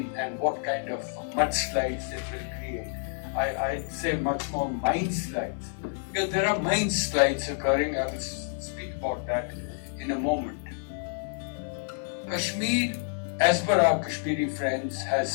and what kind of mudslides it will create. I'd say much more mind slides, because there are mind slides occurring. I will speak about that in a moment. Kashmir, as per our Kashmiri friends, has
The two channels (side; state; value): right; silent; 59 dB below the other